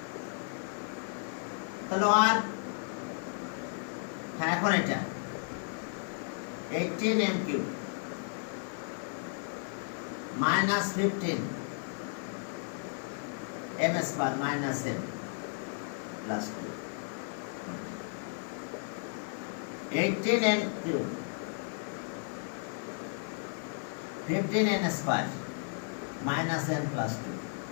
তাহলে আর হ্যাঁ এখন এটা 18m cube minus 15 m square minus m plus 2 18n cube 15n square minus n plus 2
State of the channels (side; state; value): right; silent; 55 dB below the other